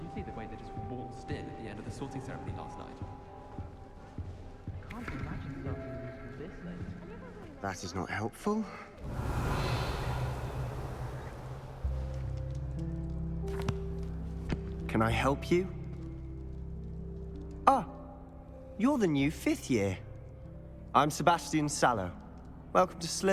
you see the way they just waltzed in at the end of the sorting ceremony last night? I can't imagine starting a musical this late. That is not helpful. Can I help you? Ah, you're the new 5th year. I'm Sebastian Sallow. Welcome to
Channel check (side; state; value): both; identical; correlation 1.00